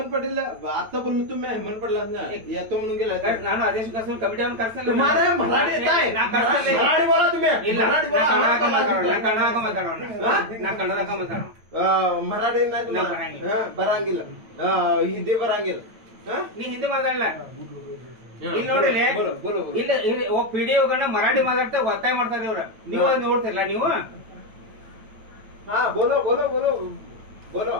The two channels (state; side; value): late; left; 9.0 ms